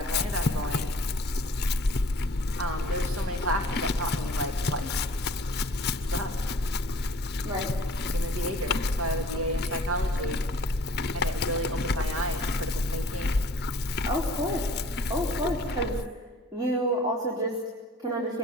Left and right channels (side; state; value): both; normal; correlation 0.51